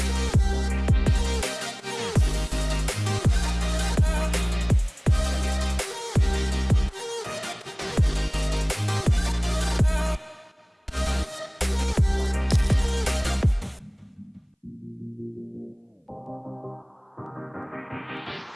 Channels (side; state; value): both; identical; correlation 1.00